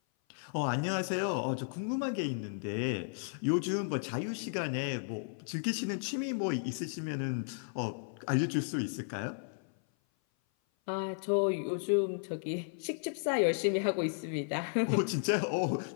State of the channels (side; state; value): right; silent; 55 dB below the other